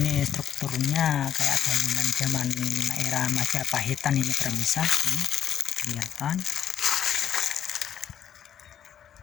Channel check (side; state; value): right; quieter; 9.5 dB